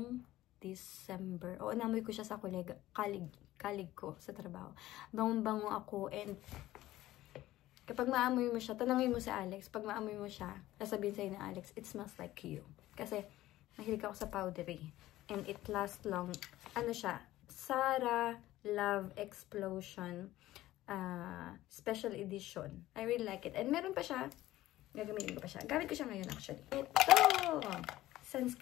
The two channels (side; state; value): right; quieter; 15.7 dB